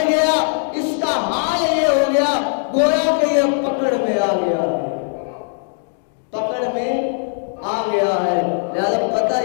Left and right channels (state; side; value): silent; right; digital silence